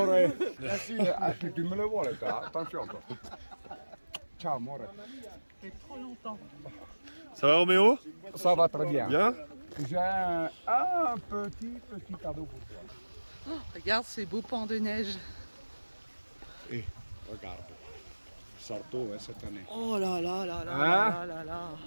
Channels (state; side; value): inverted; both; correlation -1.00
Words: Sì, tu me le vuole, attention. Ciao amore. C'est trop longtemps. Ça va Roméo? Ça va très bien. Bien? J'ai un petit cadeau pour toi. Oh, regarde ces beaux pans de neige. Et regarde, Sarto cette année. Oh là là là là Hein? là là là.